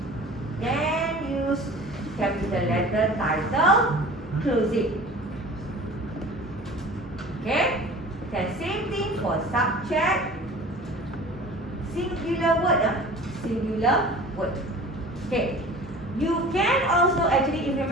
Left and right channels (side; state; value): both; normal; correlation 0.42